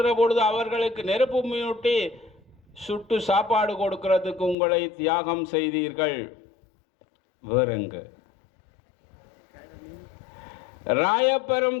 பொழுது அவர்களுக்கு நெருப்பு மூட்டி சுட்டு சாப்பாடு கொடுக்கிறதுக்கு உங்களை தியாகம் செய்தீர்கள். வேறெங்க?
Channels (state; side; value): drops out; right; at 4.5 s